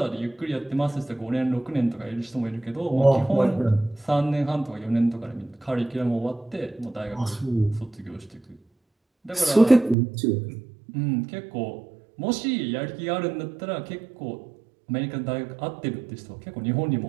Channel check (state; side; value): drops out; left; at 10.0 s